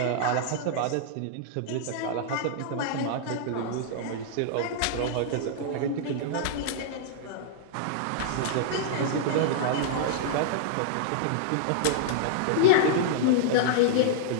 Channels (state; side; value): different; both; correlation -0.02